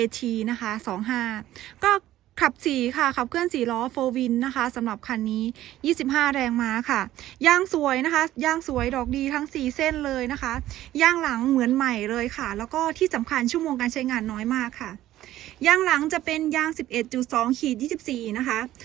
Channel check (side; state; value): left; quieter; 14.1 dB